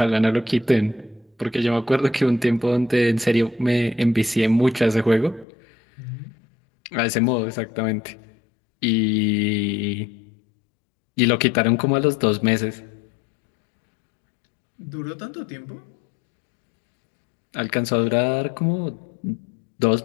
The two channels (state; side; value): drops out; right; at 5.5 s